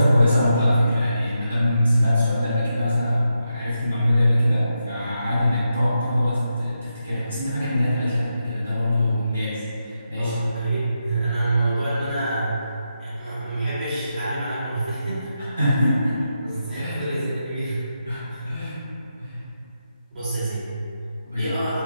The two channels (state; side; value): inverted; both; correlation -0.86